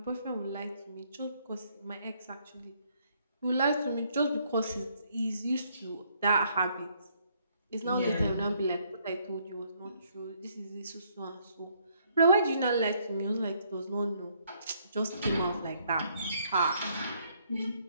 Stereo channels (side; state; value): both; inverted; correlation -0.69